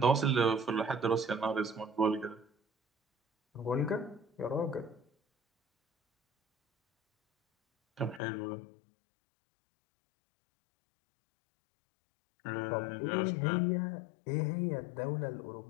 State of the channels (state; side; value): drops out; right; at 8.2 s